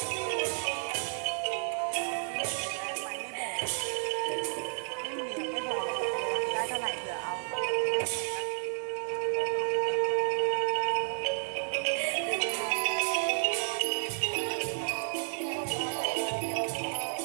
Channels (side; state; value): left; silent; 57 dB below the other